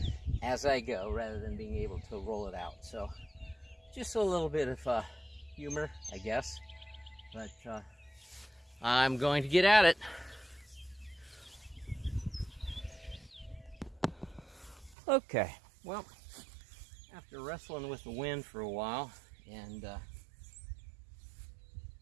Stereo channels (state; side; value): drops out; left; at 15.0 s